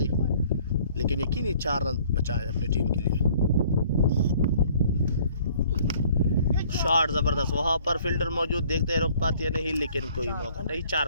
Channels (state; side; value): inverted; both; correlation -0.56